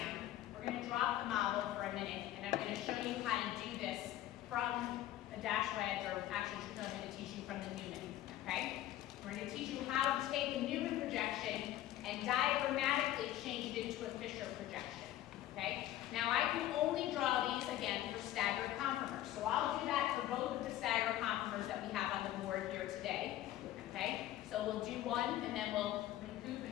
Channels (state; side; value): quieter; right; 13.6 dB